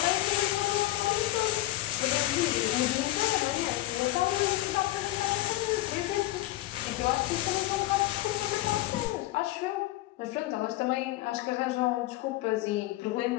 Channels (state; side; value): quieter; right; 16.7 dB